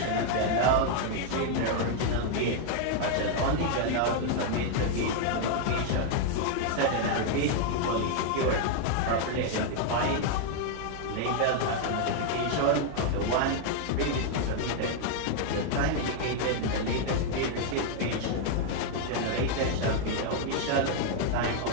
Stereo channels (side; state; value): both; different; correlation 0.00